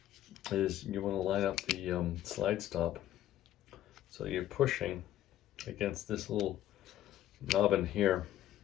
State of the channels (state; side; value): quieter; right; 12.6 dB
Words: is you want to line up the slide stop so you're pushing against this little knob in here